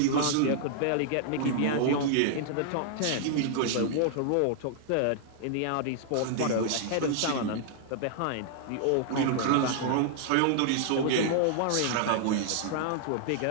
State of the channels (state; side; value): different; both; correlation -0.01